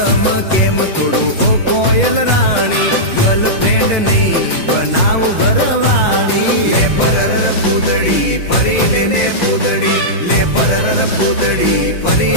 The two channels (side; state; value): right; late; 5.7 ms